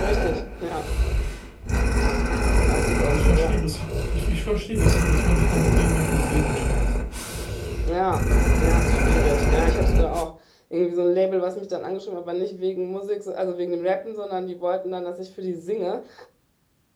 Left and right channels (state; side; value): identical; both; correlation 1.00